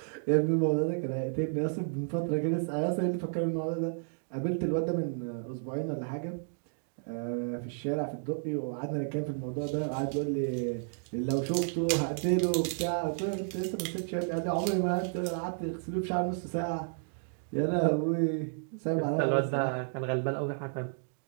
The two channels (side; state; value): left; silent; digital silence